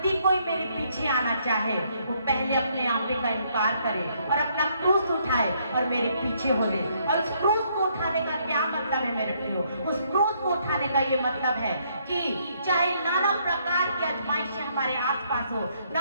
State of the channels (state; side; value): inverted; both; correlation -0.70